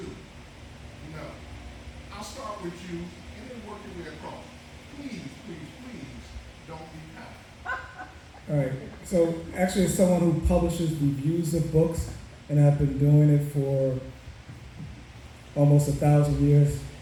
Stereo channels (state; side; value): identical; both; correlation 1.00